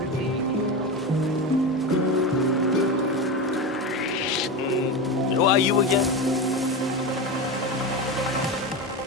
Who are you again?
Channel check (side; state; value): both; normal; correlation 0.20